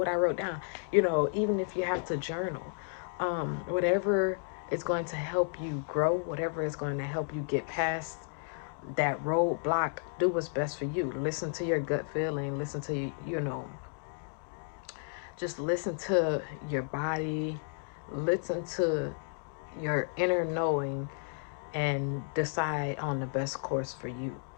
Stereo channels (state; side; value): silent; right; 56 dB below the other